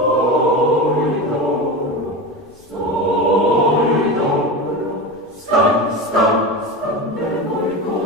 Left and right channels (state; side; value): normal; both; correlation 0.23